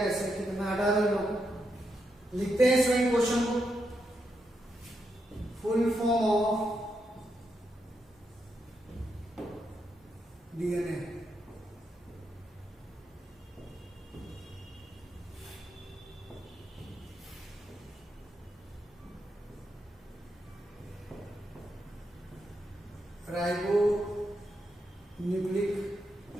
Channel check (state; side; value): normal; both; correlation 0.83